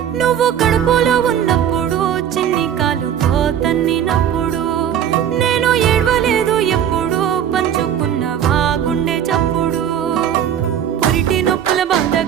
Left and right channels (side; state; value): left; quieter; 9.5 dB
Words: కడుపులో ఉన్నప్పుడు చిన్ని కాలుతో తన్నినప్పుడు నేను ఏడవలేదు ఎప్పుడు పంచుకున్నవా గుండె చప్పుడు పురిటి నొప్పుల బాధ